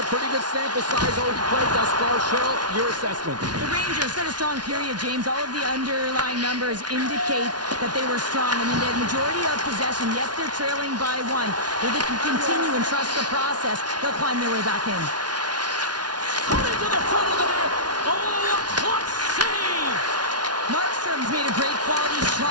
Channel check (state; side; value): late; left; 0.69 ms